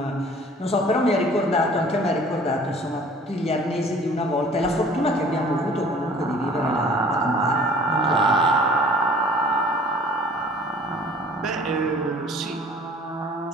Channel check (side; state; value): both; normal; correlation 0.50